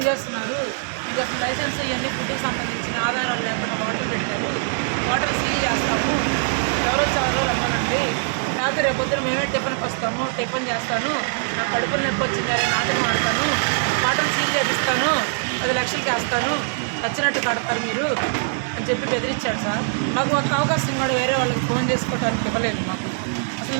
చేస్తున్నారు? మీకు అసలు లైసెన్స్ ఇవన్నీ ఫుడ్‌కి సంబంధించిన ఆధారాలు లేకుండా వాటర్ పెట్టారు. వాటర్ సీల్ చేస్తాము. ఎవరొచ్చారో రమ్మనండి. లేకపోతే రేపొద్దున మేమే టిఫిన్కి వస్తాము, టిఫిన్ చేస్తాను, నాకు కడుపులో నొప్పి వచ్చిందని మాటలు మాడతాను, వాటర్ సీల్ చేపిస్తాను, 10 లక్షలకి వేస్తాను, వచ్చినట్టు కడతారు మీరు అని చెప్పి బెదిరించాడు సార్. నాకు ఒక అవకాశం కూడా వేరే వాళ్ళకి ఫోన్ చేసుకోవడానికి ఇవ్వలేదు. మాకు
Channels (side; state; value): left; silent; digital silence